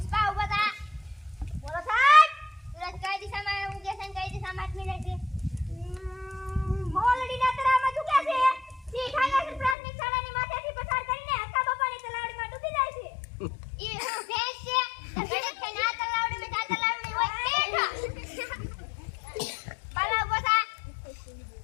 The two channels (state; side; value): drops out; right; at 9.8 s